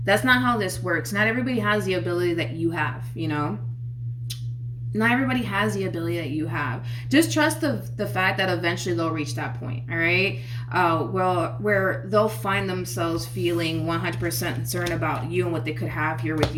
not how this works. Not everybody has the ability that you have, you know? Not everybody has the ability that you have. Just trust the fact that eventually they'll reach that point, all right? Where they'll find themselves feeling 100% concerned about you and what they could have here with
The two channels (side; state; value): both; identical; correlation 1.00